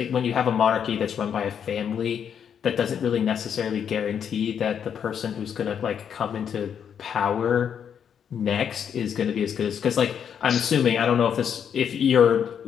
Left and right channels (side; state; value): right; quieter; 8.1 dB